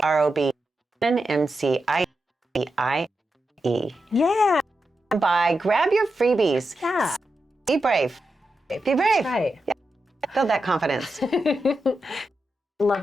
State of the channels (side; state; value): both; normal; correlation 0.88